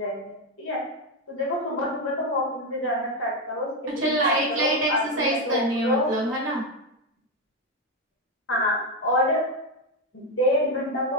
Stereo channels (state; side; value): normal; both; correlation 0.08